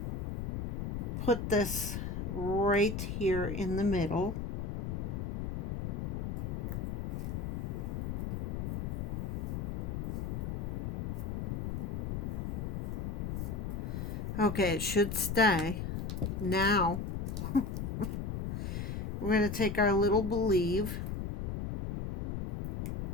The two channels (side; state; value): left; noise; rumble, 2 dB below the sound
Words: put this right here in the middle. Okay, it should stay. Now, we're going to take our little Believe,